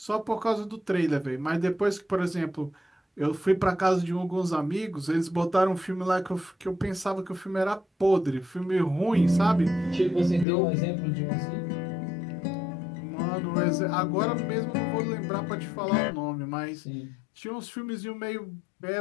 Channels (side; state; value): right; drops out; at 10.5 s